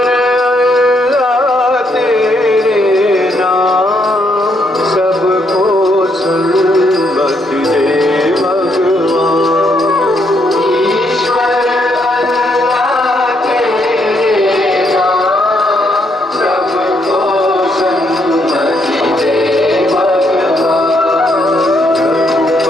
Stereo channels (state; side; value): normal; both; correlation 0.74